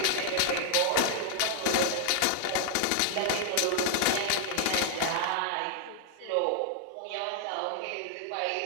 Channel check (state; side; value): different; both; correlation 0.00